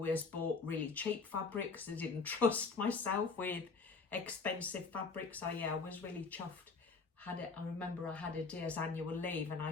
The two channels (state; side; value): quieter; right; 4.5 dB